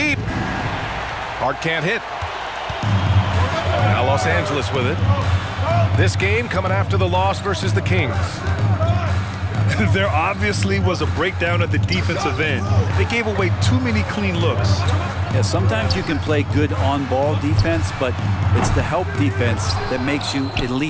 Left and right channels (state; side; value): identical; both; correlation 1.00